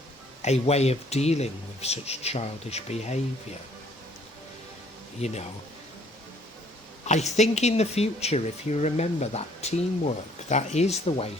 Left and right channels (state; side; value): normal; both; correlation 0.61